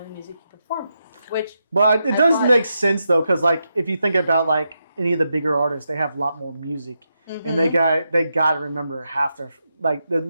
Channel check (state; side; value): inverted; both; correlation -0.85